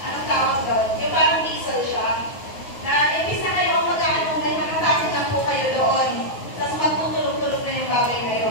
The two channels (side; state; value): right; late; 9.3 ms